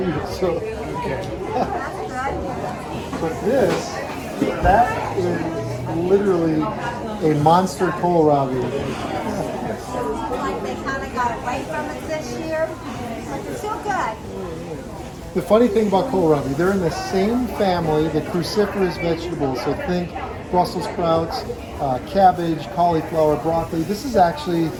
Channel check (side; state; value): both; identical; correlation 1.00